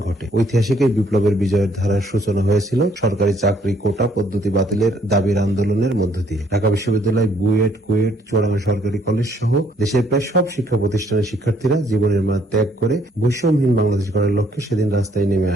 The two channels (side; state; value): both; normal; correlation 0.66